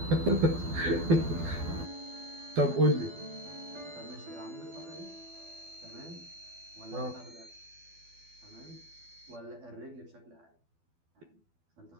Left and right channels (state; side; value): late; left; 12 ms